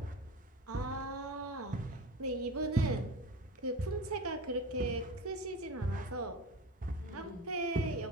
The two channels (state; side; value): normal; both; correlation 0.31